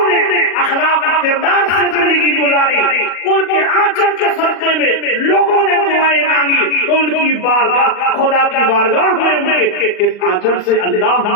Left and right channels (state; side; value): late; right; 39 ms